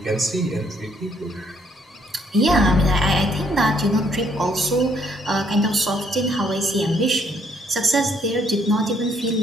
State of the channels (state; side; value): normal; both; correlation 0.68